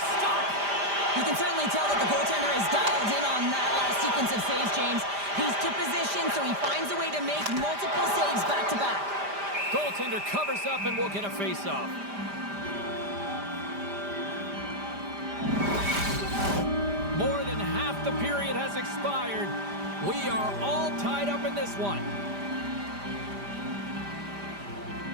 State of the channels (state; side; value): late; left; 5.0 ms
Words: stop. You can certainly tell that the goaltender is dialed in on that last sequence of saves, James. He's to position, so he finds a way to make multiple saves back-to-back. Goaltender covers up and will get a face-off. More than half the period has expired. We are all tied up in this one.